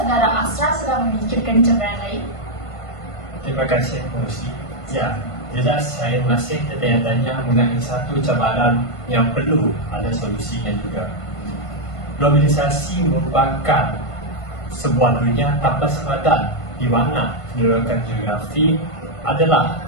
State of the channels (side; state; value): right; late; 1.5 ms